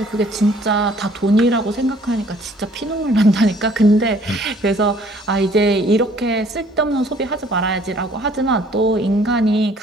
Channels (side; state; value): both; normal; correlation 0.58